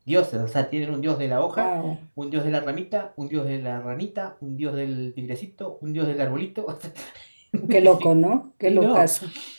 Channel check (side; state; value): both; inverted; correlation -1.00